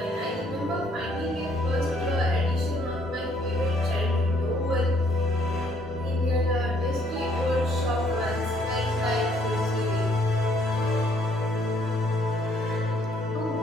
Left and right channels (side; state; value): both; normal; correlation 0.65